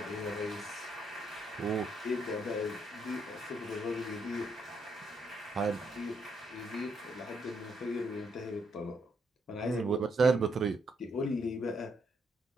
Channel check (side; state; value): both; normal; correlation 0.75